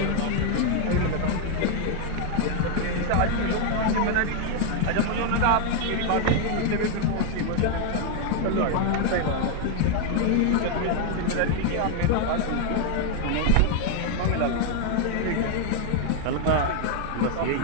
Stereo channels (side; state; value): both; different; correlation 0.00